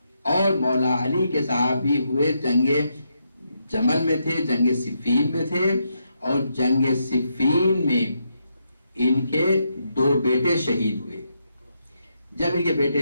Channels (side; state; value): both; inverted; correlation -0.81